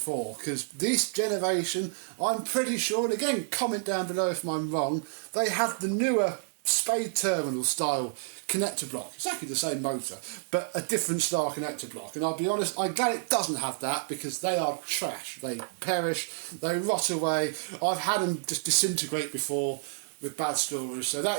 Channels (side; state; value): left; silent; digital silence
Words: because this generation, I'm pretty sure, and again, comment down below if I'm wrong, they have the newer spade terminal style connector block. Exactly the same motor, but a different style connector block. And I'll be honest, I'm glad it doesn't have that, because they are trash. They perish, they rot away. I've had them just disintegrate before with bad stories, so that